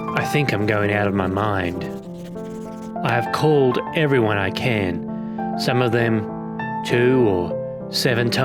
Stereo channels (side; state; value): left; noise; rumble, 30 dB below the sound